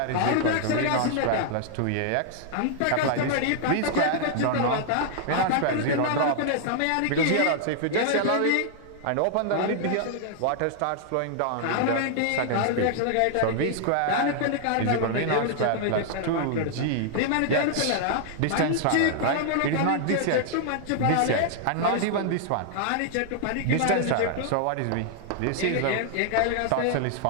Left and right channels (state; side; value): different; both; correlation -0.01